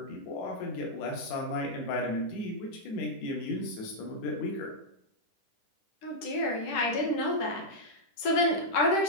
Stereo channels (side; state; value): right; late; 10 ms